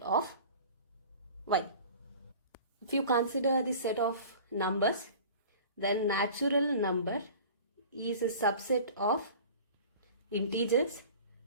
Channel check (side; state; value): both; inverted; correlation -0.42